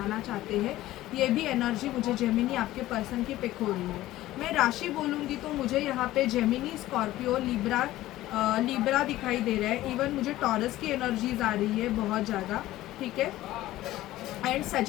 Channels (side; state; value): right; quieter; 15.7 dB